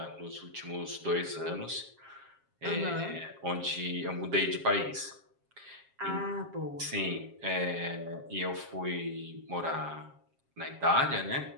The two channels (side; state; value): left; late; 7.4 ms